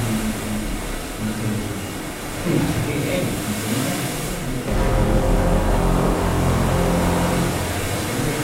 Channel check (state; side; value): identical; both; correlation 1.00